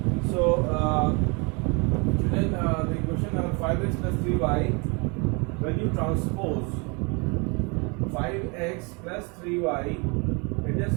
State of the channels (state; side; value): quieter; left; 31.1 dB